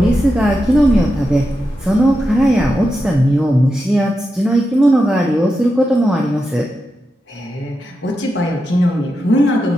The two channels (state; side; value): normal; both; correlation 0.88